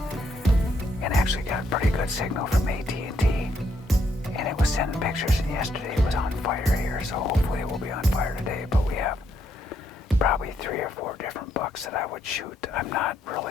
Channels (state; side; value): normal; both; correlation 0.74